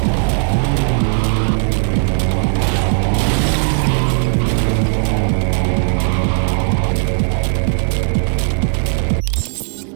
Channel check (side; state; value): left; silent; digital silence